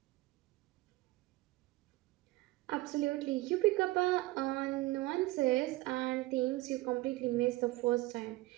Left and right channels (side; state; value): left; quieter; 19.8 dB